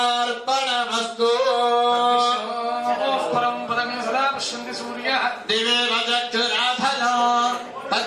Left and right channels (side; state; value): both; identical; correlation 1.00